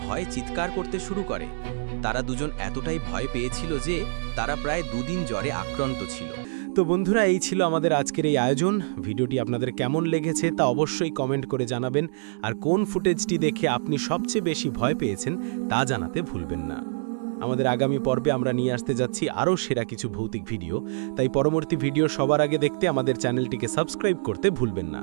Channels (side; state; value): left; silent; digital silence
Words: ভয়ে চিৎকার করতে শুরু করে। তারা দুজন এতটাই ভয় পেয়েছিল যে তারা প্রায় 2 দিন জ্বরে আক্রান্ত ছিল। তো বন্ধুরা, এই ছিল আমাদের আজকের এই আয়োজন। ভিডিওটি আপনাদের কেমন লেগেছে তা অবশ্যই কমেন্ট করে জানাবেন, আর কোন ফুটেজটি দেখে আপনি সবচেয়ে বেশি ভয় পেয়েছেন তা জানাতে ভুলবেন না। আমাদের আগামী পর্বে আমরা নিয়ে আসতে যাচ্ছি আরও সেরা কিছু ভৌতিক ভিডিও, তাই পরবর্তী ভিডিও সবার আগে দেখতে আমাদের চ্যানেলটিকে সাবস্ক্রাইব করতে ভুলবেন না।